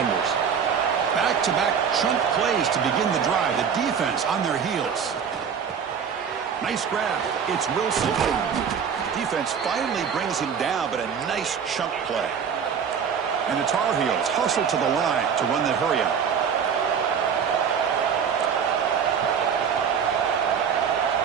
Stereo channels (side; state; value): left; quieter; 7.1 dB